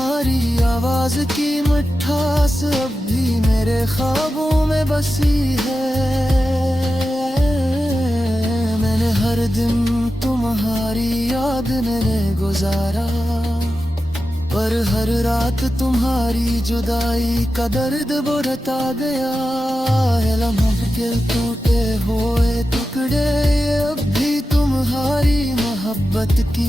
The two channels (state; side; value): normal; both; correlation 0.92